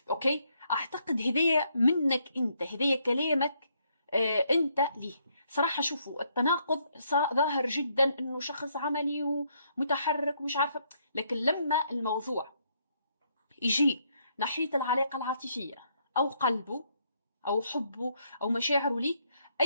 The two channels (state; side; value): inverted; both; correlation -0.73